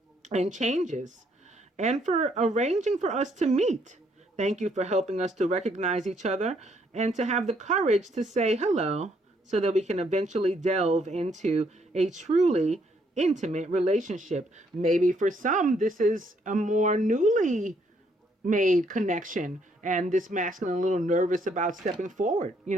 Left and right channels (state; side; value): normal; both; correlation 0.70